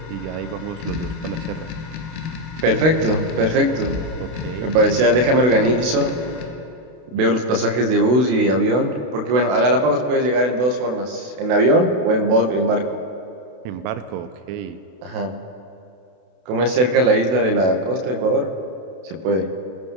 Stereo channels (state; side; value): late; left; 32 ms